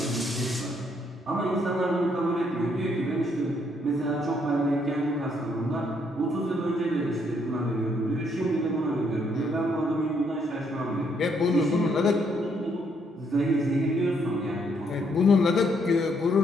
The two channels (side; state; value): both; normal; correlation 0.71